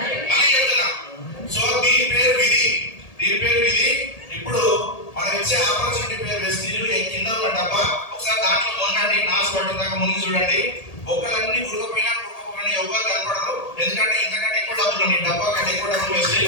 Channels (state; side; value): late; right; 1.8 ms